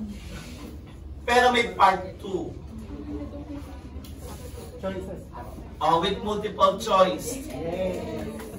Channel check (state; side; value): identical; both; correlation 1.00